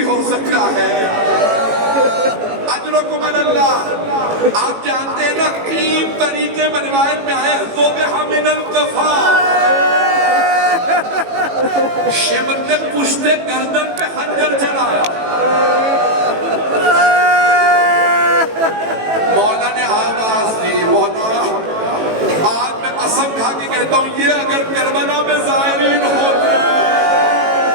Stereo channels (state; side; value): late; left; 18 ms